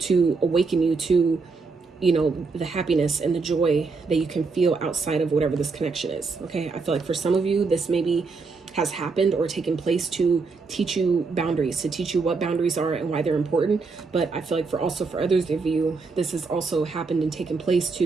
awaken you to, you know, the happiness and the joy that you can feel outside of whatever this connection is. Okay. I feel like for some of you, this maybe has happened or taken place to teach you boundaries, to teach you what boundaries are and why they're important. But I feel like for others of you, this has also happened and taken place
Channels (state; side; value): quieter; left; 4.4 dB